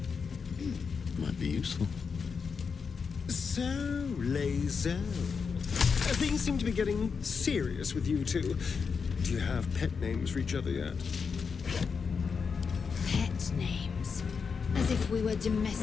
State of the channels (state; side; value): quieter; right; 5.7 dB